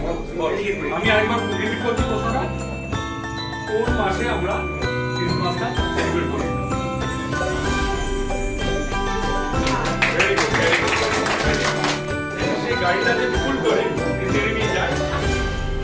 আমি আরেকবার রিপিট করছি প্রশ্নটা। কোন মাসে আমরা ক্রিসমাসটা সেলিব্রেট করি? Very good, very good. সেই গাড়িটা যে ফুল করে ছেড়ে নিয়ে যায়,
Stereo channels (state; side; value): identical; both; correlation 1.00